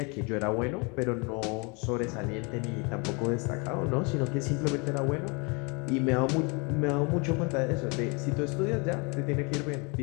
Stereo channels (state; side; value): quieter; right; 30.9 dB